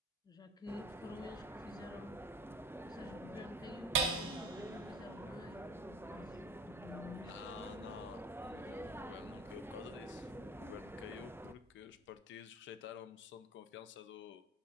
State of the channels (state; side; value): normal; both; correlation 0.39